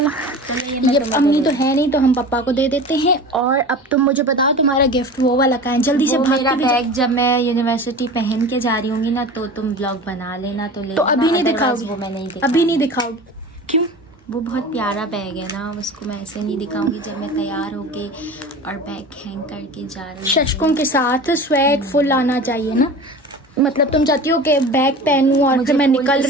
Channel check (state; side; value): normal; both; correlation 0.35